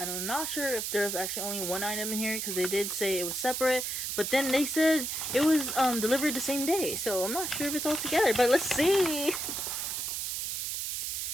I'm not sure if there's actually only 1 item in here because they did say it was separate, but then they said it was delivered the same day, so I'm not sure if it's all together, but let's see.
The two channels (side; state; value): right; noise; hiss, 2 dB below the sound